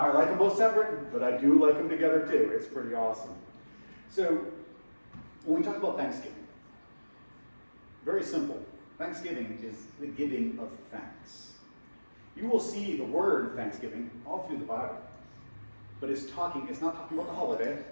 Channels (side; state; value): both; inverted; correlation -1.00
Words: like them both separate, but I do like them together too. It's pretty awesome. So, when we talk about Thanksgiving, very simple. Thanksgiving is the giving of thanks. You will see the word Thanksgiving all through the Bible. But it's not talking about the holiday.